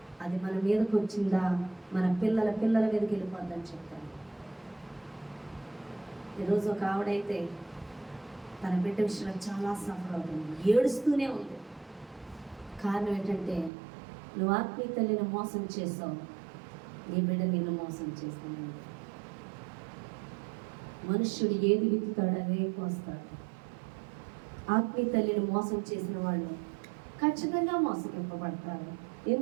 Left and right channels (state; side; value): drops out; left; at 13.7 s